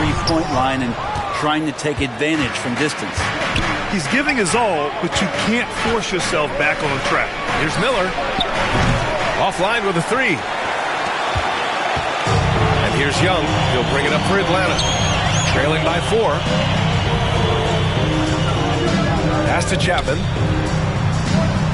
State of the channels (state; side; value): identical; both; correlation 1.00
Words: line and trying to take advantage from distance. He's giving his all, but you can't force yourself back on track. Here's Miller. Offline with a 3. And here's Young. He'll bring it up for Atlanta. Trailing by 4. Pass to Chapman.